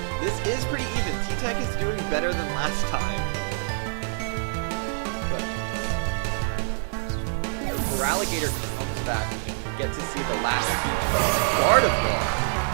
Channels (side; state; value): left; silent; digital silence